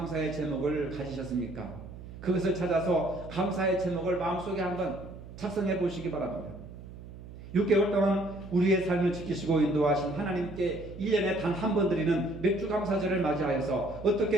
제목을 가지셨습니까? 그것을 찾아서 감사의 제목을 마음속에 한번 작성해 보시기 바랍니다. 6개월 동안 우리의 삶을 지키시고 인도하신 하나님께 1년에 단 한 번 드리는 맥주 감사절을 맞이하여서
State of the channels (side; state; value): right; noise; hum, 14 dB below the sound